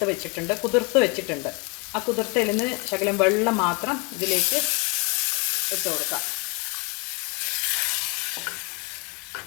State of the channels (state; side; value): quieter; right; 31.4 dB